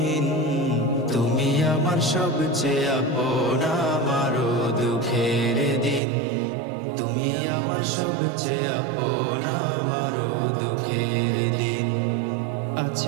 তুমি আমার সবচেয়ে আপন আমার দুঃখের দিন, তুমি আমার সবচেয়ে আপন আমার দুঃখের দিন।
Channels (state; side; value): drops out; left; at 6.0 s